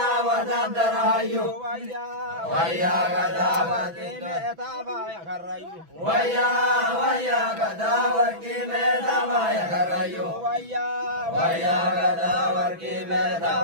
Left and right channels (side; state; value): left; late; 6.0 ms